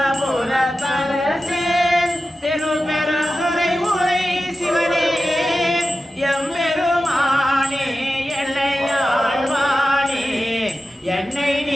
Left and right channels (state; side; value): normal; both; correlation 0.93